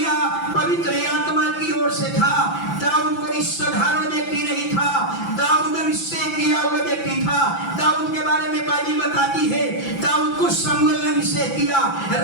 पवित्र आत्मा की ओर से था। दाऊद कोई साधारण व्यक्ति नहीं था, दाऊद अभिषेक किया हुआ व्यक्ति था। दाऊद के बारे में बाइबल बताती है, दाऊद को शमूएल ने अभिषेक किया,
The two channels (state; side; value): late; right; 5.9 ms